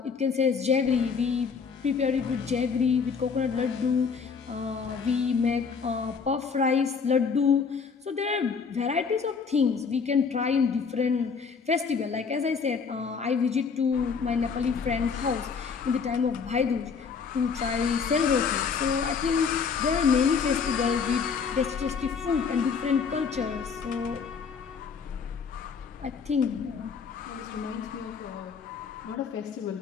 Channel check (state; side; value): quieter; right; 5.7 dB